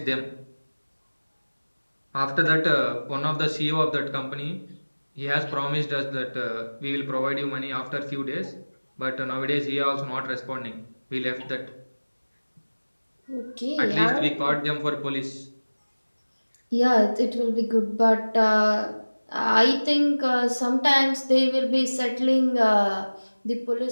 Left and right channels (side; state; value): both; inverted; correlation -1.00